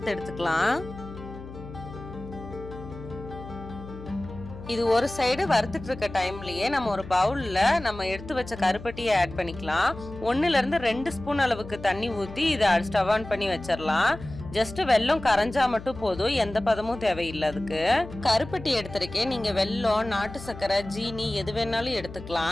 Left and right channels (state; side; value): noise; left; hum, 14 dB below the sound